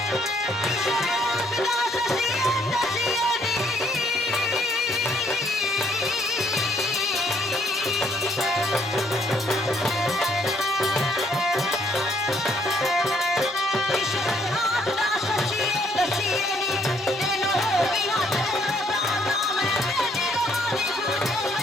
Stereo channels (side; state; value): both; normal; correlation 0.67